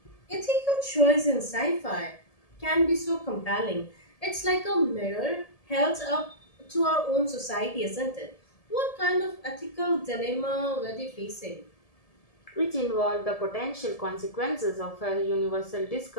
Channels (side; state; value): right; late; 1.7 ms